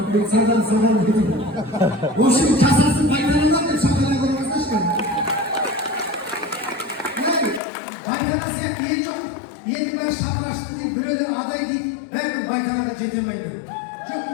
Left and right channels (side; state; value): right; drops out; at 7.6 s